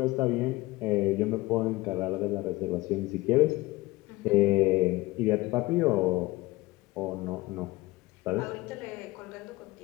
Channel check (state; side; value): quieter; right; 20.2 dB